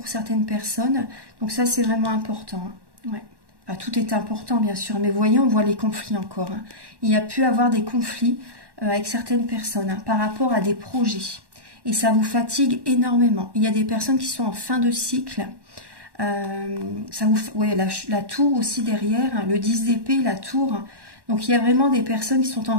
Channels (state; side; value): late; left; 1.1 ms